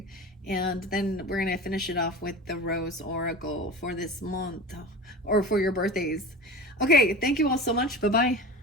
And then we're going to finish it off with the Rose Oracle for this month or for your birthdays. Okay. Thank you all so much. Bye-bye.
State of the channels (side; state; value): both; normal; correlation 0.33